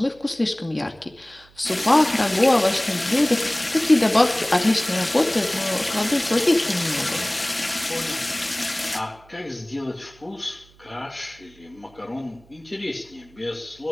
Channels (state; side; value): noise; right; hum, 28 dB below the sound